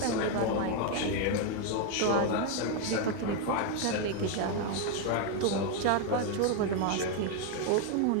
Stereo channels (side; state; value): both; different; correlation 0.01